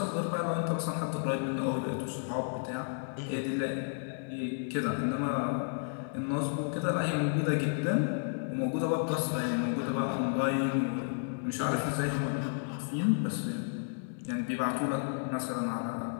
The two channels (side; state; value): right; silent; digital silence